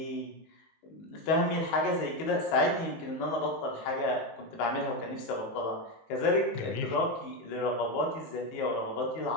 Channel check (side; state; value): right; late; 19 ms